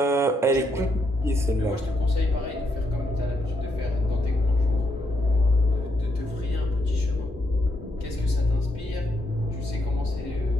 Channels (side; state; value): both; normal; correlation 0.78